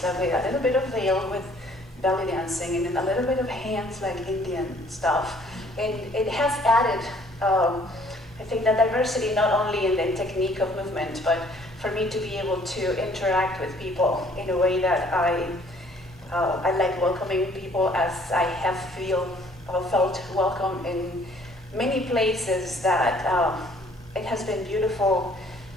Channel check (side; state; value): both; normal; correlation 0.59